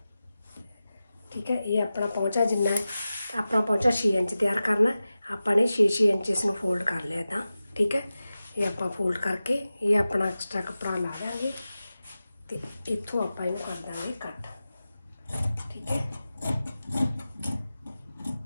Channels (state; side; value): inverted; both; correlation -0.95